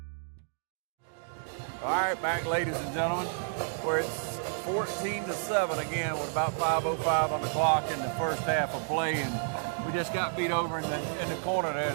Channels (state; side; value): silent; left; 57 dB below the other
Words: All right, back, ladies and gentlemen, where it's 14-7 again with about 5:05 on the clock in the first half of play, and we just got beat over in the corner there,